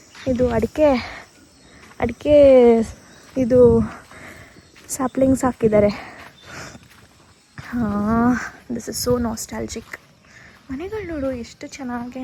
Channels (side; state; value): both; identical; correlation 1.00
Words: ಇದು ಅಡಿಕೆ ಇದು ಸ್ಯಾಪ್ಲಿಂಗ್ಸ್ ಹಾಕಿದ್ದಾರೆ. This is so nostalgic. ಮನೆಗಳು ನೋಡು ಎಷ್ಟು ಚೆನ್ನಾಗಿ